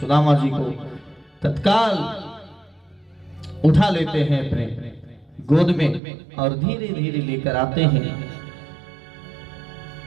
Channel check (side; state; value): left; drops out; at 6.0 s